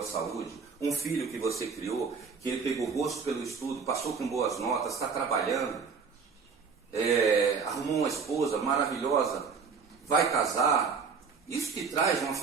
saúde, um filho que você criou, que ele pegou gosto pelo estudo, passou com boas notas, está trabalhando, arrumou uma esposa maravilhosa, vai casar, isso que traz uma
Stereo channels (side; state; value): left; quieter; 5.5 dB